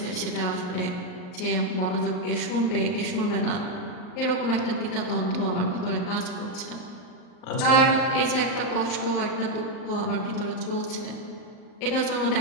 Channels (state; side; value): late; right; 39 ms